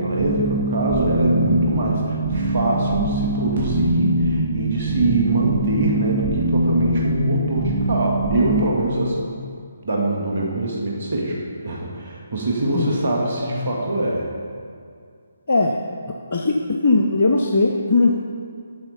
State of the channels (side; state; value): both; inverted; correlation -0.62